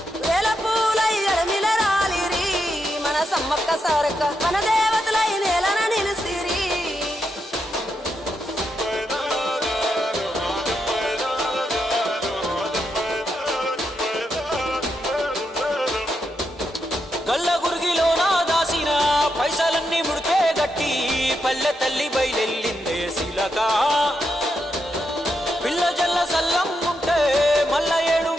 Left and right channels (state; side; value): normal; both; correlation 0.83